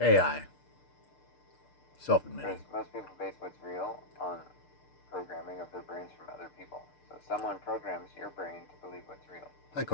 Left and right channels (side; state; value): right; late; 6.7 ms